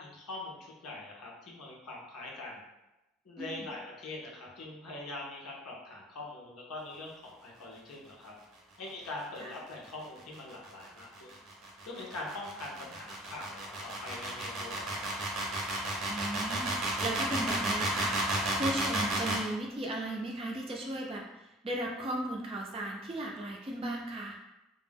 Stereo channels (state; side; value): normal; both; correlation 0.47